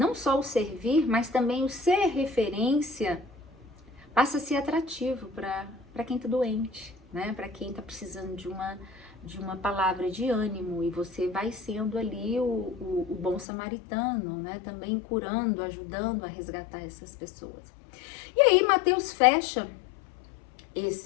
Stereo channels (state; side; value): drops out; right; at 13.5 s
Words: só o servir, mas também o ser referência, passa a ser atrativo para quem está doente, né? Para quem está precisando de uma palavra de ânimo, e você vai sendo ali o bom samaritano, né? Também curando, ajudando a resgatar essas pessoas. E aí Mateus fecha